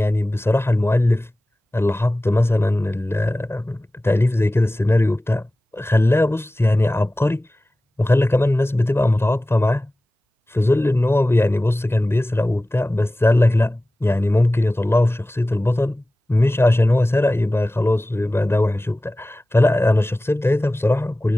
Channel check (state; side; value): normal; both; correlation 0.97